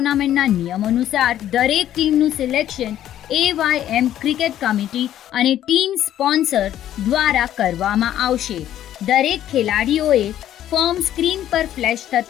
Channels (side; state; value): right; quieter; 11.8 dB